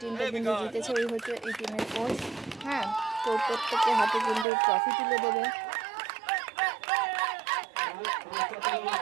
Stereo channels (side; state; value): left; drops out; at 4.5 s